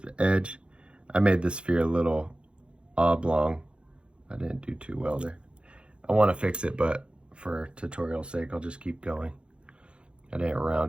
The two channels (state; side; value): late; left; 0.057 ms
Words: edge. I made this sphere a little oblong. I didn't do too well there. I want to fix it, but for tutorial sake, I'll just keep going. I didn't